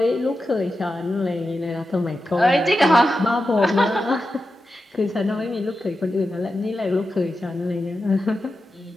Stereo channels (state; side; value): normal; both; correlation 0.91